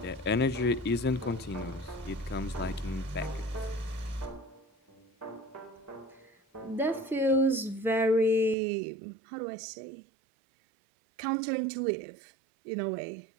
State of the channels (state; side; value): drops out; left; at 8.6 s